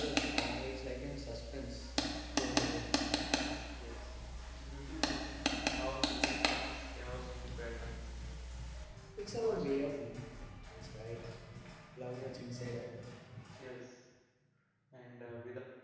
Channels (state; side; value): identical; both; correlation 1.00